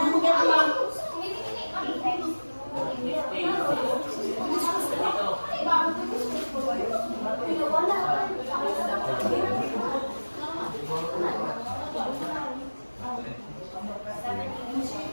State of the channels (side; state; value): both; inverted; correlation -1.00